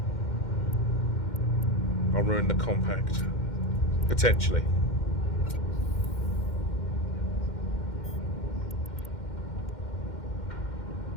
I'll ruin the compact. Potentially.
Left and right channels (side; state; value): right; late; 2.1 ms